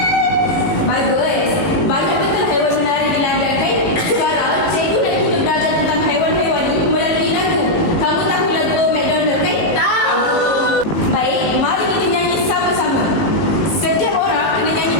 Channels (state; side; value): late; right; 18 ms